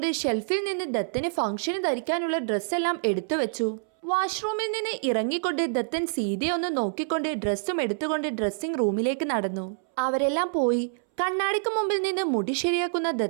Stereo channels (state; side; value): silent; left; 60 dB below the other